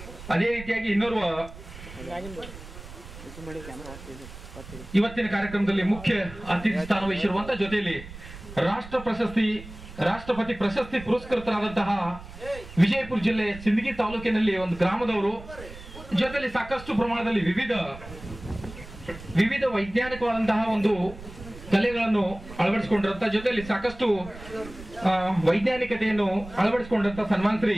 ಅದೇ ರೀತಿಯಾಗಿ ಇನ್ನೋರ್ವ ಇವತ್ತಿನ ಕಾರ್ಯಕ್ರಮದಲ್ಲಿ ಮುಖ್ಯ ಅತಿಥಿ ಸ್ಥಾನ ವಹಿಸಿರುವಂತಹ ಜೊತೆಯಲ್ಲಿ ರಾಷ್ಟ್ರಪತಿ ಪ್ರಶಸ್ತಿ ಪುರಸ್ಕೃತರಾದಂತಹ ವಿಜಯಪುರ ಜಿಲ್ಲೆ ಸಿಂದಗಿ ತಾಲೂಕಿನಲ್ಲಿ ಒಂದು ಗ್ರಾಮದವರು, ಜೊತೆಯಲ್ಲಿ ಸಾಕಷ್ಟು ಪ್ರಮಾಣದಲ್ಲಿ ವಿವಿಧ ವೈಜ್ಞಾನಿಕವಾದಂತಹ ಒಂದು ಕಲೆಗಳನ್ನು ಅಳವಡಿಸಿಕೊಂಡಿರುವಂತಹ ಜೊತೆಯಲ್ಲಿ ಸಾಕಷ್ಟು ವೈಜ್ಞಾನಿಕತೆಯನ್ನು ಅಳವಡಿಸಿಕೊಂಡಿರುವಂತಹ ಸನ್ಮಾನ್ ಶ್ರೀ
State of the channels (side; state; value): right; noise; rumble, 15 dB below the sound